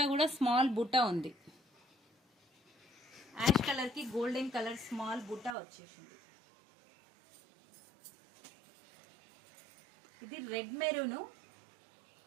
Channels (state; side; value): drops out; left; at 5.6 s